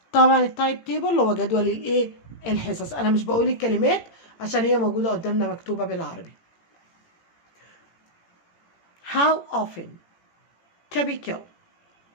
طبعا التايم تيبل اللي هو جدول الايه الحصص. انا مش بقول الكلمات عشان هي موجوده قدامنا مكتوبه بالعربي. how often typical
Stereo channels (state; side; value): late; right; 18 ms